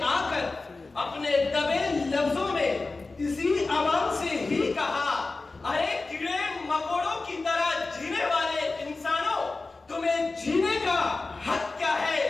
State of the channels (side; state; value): right; quieter; 3.6 dB